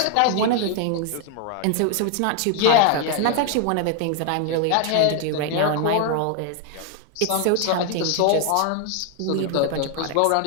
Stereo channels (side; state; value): both; different; correlation 0.00